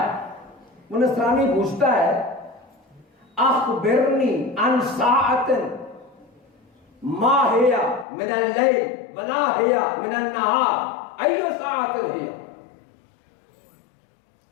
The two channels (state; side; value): drops out; right; at 8.1 s